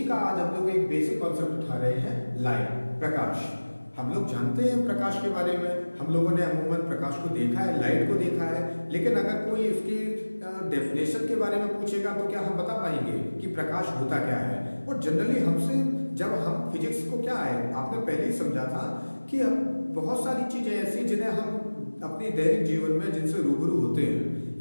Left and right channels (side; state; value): both; inverted; correlation -1.00